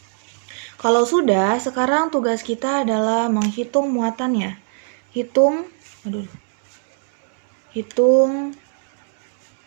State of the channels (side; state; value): left; silent; 65 dB below the other